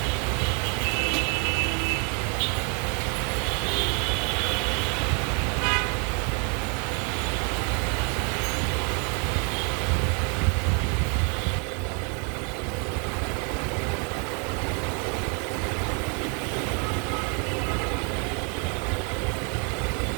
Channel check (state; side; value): quieter; left; 36.2 dB